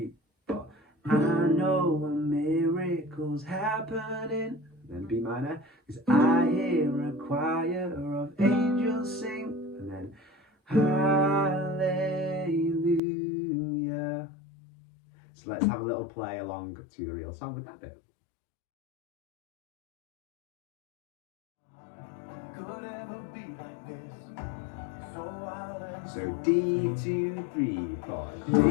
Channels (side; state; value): right; drops out; at 13.0 s